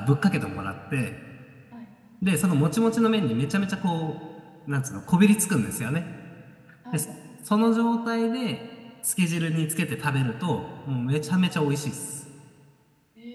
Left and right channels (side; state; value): both; identical; correlation 1.00